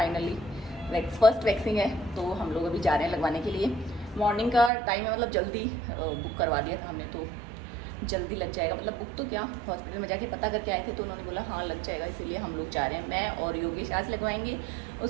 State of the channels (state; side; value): drops out; left; at 4.7 s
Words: फर्स्ट वैक्सीन है तो हम लोग अभी जा रहे हैं लगवाने के लिए। मॉर्निंग का टाइम है, जल्दी बुक करवा दिया था हमने तो जल्दी लग जाएगा। बुक तो क्या, हॉस्पिटल में जाके पता करके आए थे तो उन्होंने बोला हाँ लग जाएगा, इसीलिए हम लोग जा रहे हैं। मैं और योगेश आज लगवाएंगे,